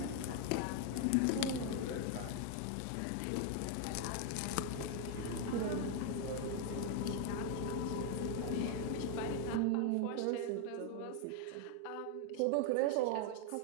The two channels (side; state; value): both; different; correlation 0.00